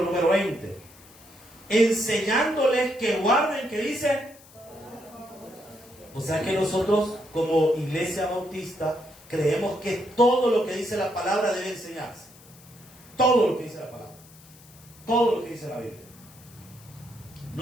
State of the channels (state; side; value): noise; left; hiss, 23 dB below the sound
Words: número 20, enseñándoles que guarden, ¿qué dice? O sea que nosotros como iglesia bautista creemos que todo lo que dice la palabra debe enseñarse. Todo lo que dice la palabra. Todo lo que dice la Biblia.